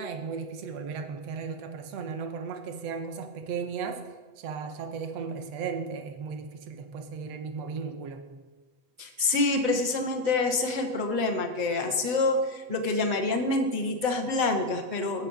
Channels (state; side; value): late; left; 8.0 ms